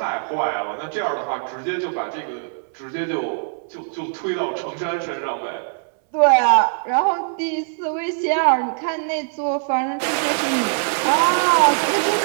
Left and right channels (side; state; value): left; silent; 64 dB below the other